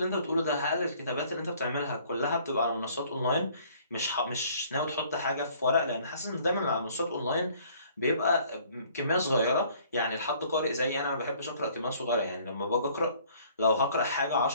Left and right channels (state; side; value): inverted; both; correlation -0.57